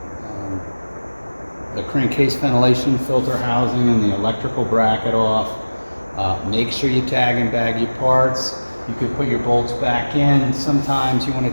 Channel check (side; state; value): both; inverted; correlation -1.00